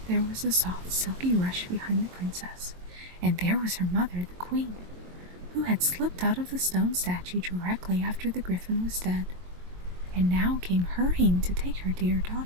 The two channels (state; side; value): late; left; 22 ms